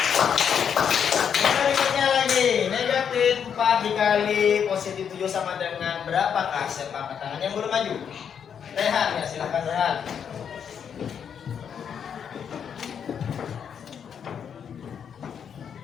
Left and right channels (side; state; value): right; quieter; 7.7 dB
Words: Berikutnya lagi, negatif 4 dikali positif 7 sama dengan berapakah? Siapa angkat tangan yang belum maju? Rehan ya, silahkan Rehan.